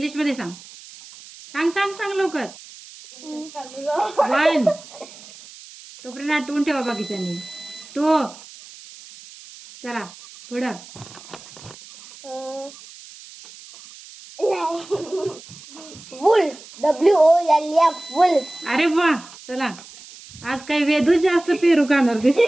मध्ये सांग. सांग सांग सांग लवकर. 1. तोपर्यंत आठवून ठेवा बाकीच्यांनी. 2. चला पुढं. वुल्फ. WOLF. वुल्फ. अरे वा, चला. आज काही वेदूच जास्त पेरू खाणार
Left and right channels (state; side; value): noise; right; hiss, 19 dB below the sound